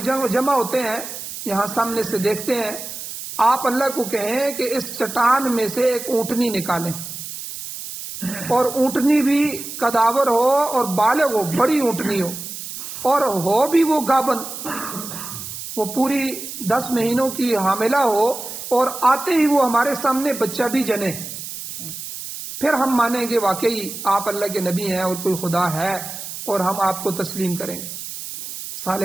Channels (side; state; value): right; noise; hiss, 9 dB below the sound